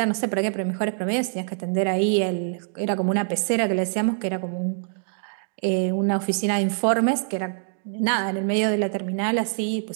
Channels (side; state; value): left; silent; digital silence